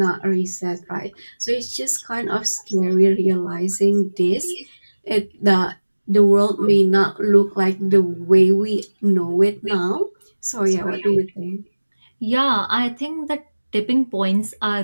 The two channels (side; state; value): both; inverted; correlation -1.00